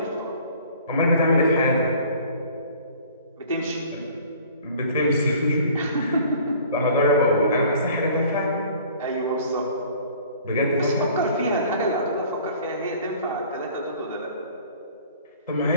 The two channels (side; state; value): both; inverted; correlation -0.50